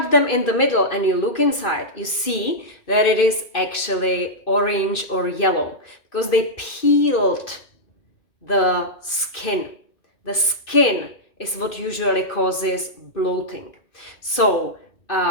them in the middle and you look inside, you see that it is actually orange or yellow because they peeled the skin. The skin is what usually causes bloating. So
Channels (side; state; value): right; late; 2.4 ms